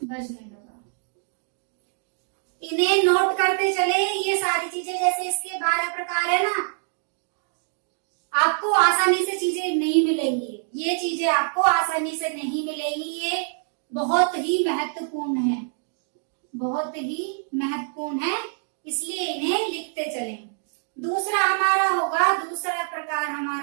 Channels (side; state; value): left; silent; digital silence